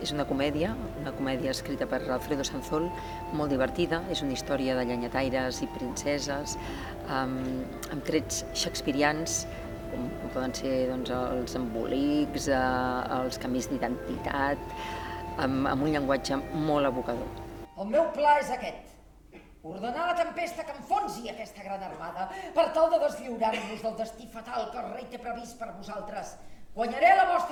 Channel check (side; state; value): both; identical; correlation 1.00